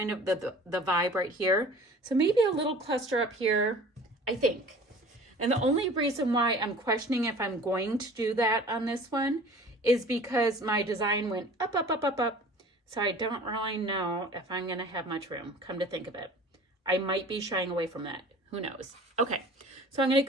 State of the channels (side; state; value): both; normal; correlation 0.45